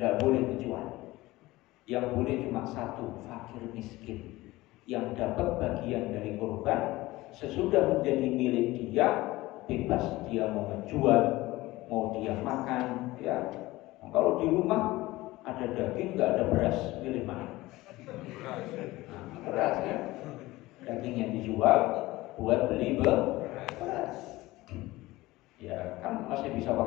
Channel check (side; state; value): right; quieter; 19.0 dB